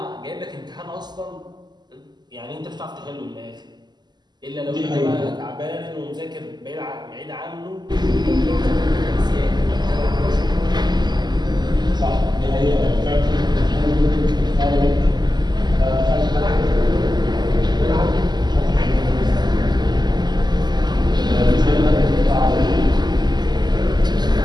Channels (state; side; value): late; left; 0.21 ms